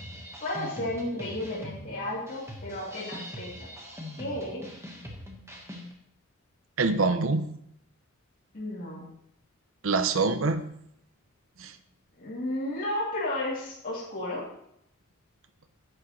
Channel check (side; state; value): both; normal; correlation 0.07